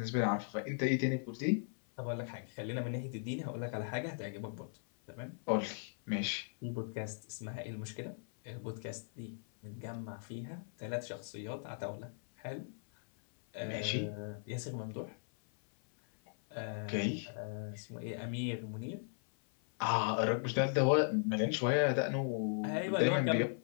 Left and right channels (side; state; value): right; silent; 53 dB below the other